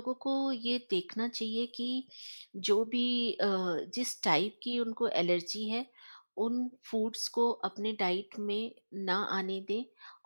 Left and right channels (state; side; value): inverted; both; correlation -1.00